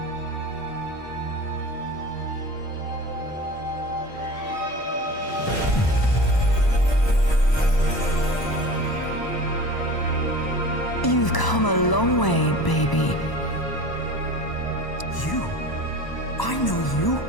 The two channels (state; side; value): late; right; 1.0 ms